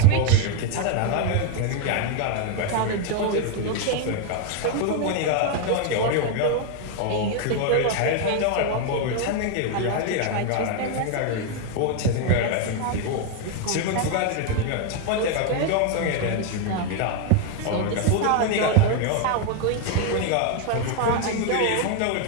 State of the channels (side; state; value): both; different; correlation 0.01